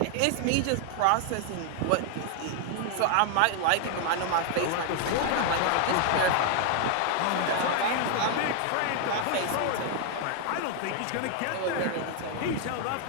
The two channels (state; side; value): different; both; correlation 0.00